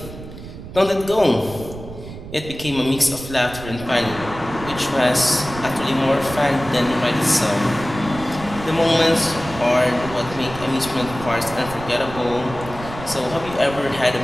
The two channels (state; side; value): noise; right; rumble, 13 dB below the sound